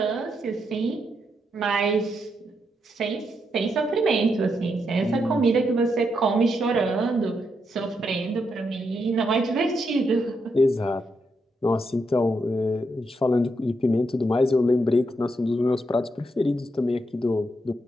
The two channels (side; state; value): both; normal; correlation 0.81